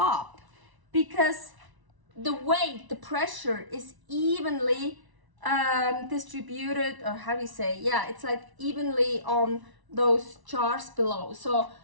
because the weight, the pressure is evenly distributed, or how do you say, yeah, it's like evenly on those jars below. So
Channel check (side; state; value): left; late; 1.0 ms